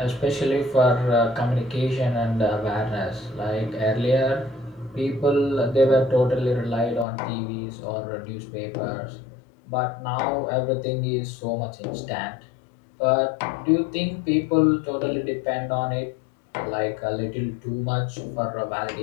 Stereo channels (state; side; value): drops out; right; at 7.1 s